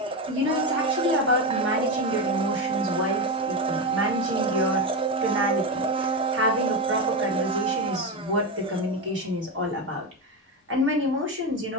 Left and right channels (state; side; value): normal; both; correlation 0.14